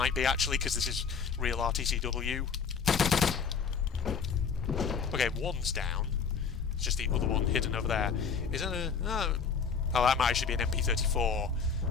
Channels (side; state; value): right; quieter; 6.0 dB